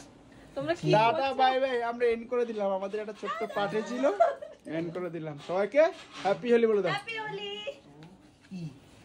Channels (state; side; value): identical; both; correlation 1.00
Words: তোমরা কি টাটা বাই বাই আমরা এন্ড করে দিলাম আমাদের একটা ছোট্ট পার্টি ছিল এন্ড করে দিলাম সবাইকে হ্যাপি হোলি বলে দাও হ্যাপি হোলি।